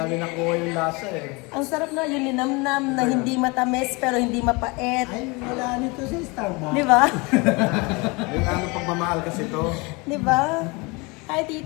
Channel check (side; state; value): right; quieter; 27.0 dB